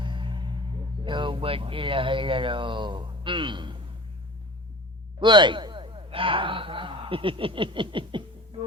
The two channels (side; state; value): both; normal; correlation 0.39